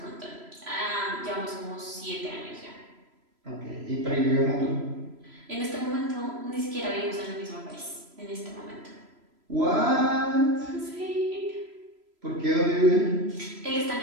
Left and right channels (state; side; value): late; left; 3.0 ms